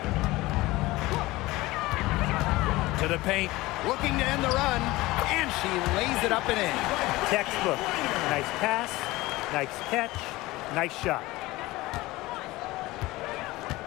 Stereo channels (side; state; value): right; quieter; 19.6 dB